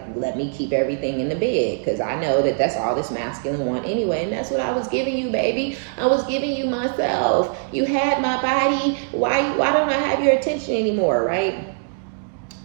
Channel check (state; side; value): silent; left; digital silence